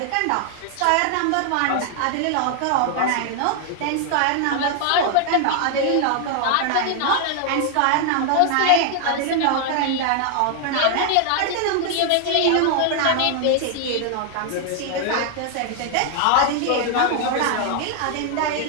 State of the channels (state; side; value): different; both; correlation 0.00